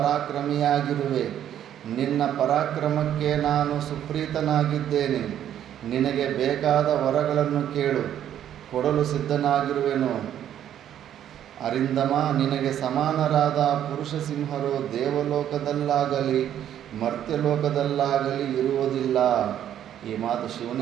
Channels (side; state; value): left; quieter; 10.5 dB